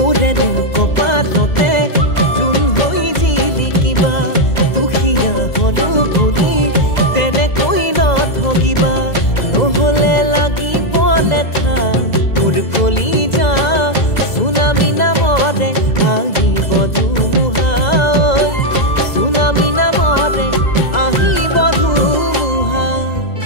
কপালতে জোন হৈ জিলিকিবা দুখীয়া হলো বুলি তেনেকৈ নঠগিবা নহলে লাগিব লেঠা মোৰ কলিজা চুনামি নামৰে আহিব ধুমুহা চুনামি নামৰে আহিব ধুমুহা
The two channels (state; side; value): late; right; 2.0 ms